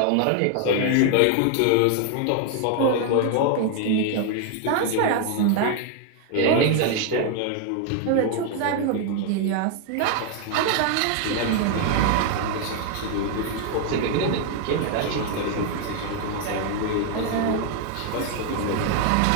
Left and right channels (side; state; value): both; different; correlation 0.00